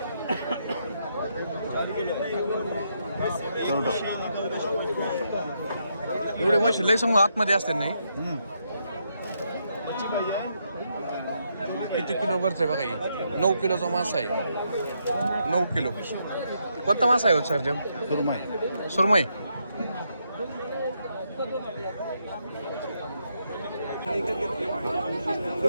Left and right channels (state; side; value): inverted; both; correlation -0.78